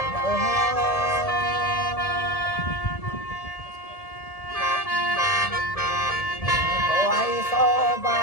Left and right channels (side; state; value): right; late; 1.7 ms